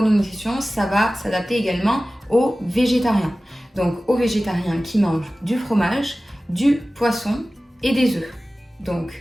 ça va s'adapter également aux végétariens. Donc aux végétariens qui mangent du fromage, du poisson et des œufs. Donc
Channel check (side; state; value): both; normal; correlation 0.96